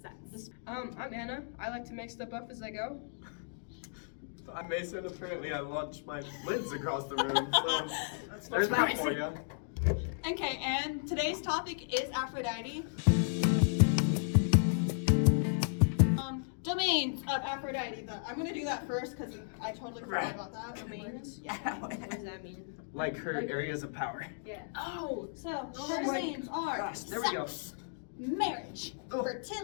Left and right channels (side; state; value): right; silent; digital silence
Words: since. I'm Anna. I like to make stuff up as I go. I'm Mason. Apparently, I launched my lids across the room, so there's that for you. Okay, and today's topic is Aphrodite. Domains of Aphrodite. I'm gonna do that first because I totally forgot about that. Domains? Yeah. What does that mean? Like her areas of power. Yeah. Oh! So Oh her my domains are gosh, there we go. sex, marriage, Oh.